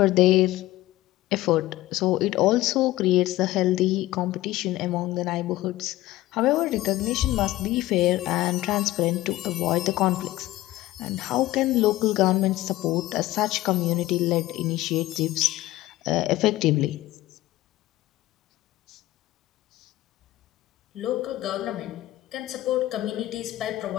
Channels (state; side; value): quieter; right; 16.7 dB